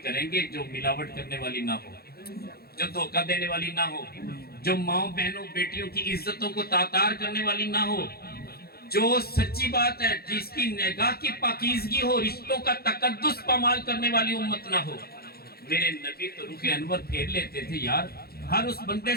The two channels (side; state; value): right; late; 0.45 ms